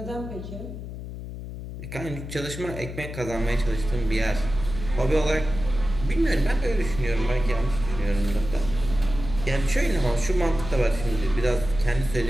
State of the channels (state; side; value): noise; left; hum, 9 dB below the sound